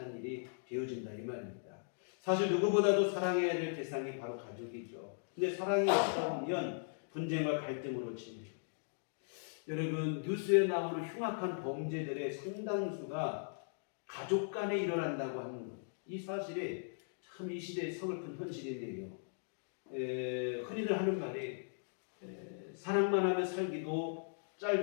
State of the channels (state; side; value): silent; right; digital silence